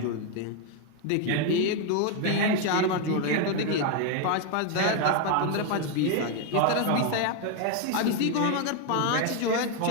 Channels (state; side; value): different; both; correlation 0.01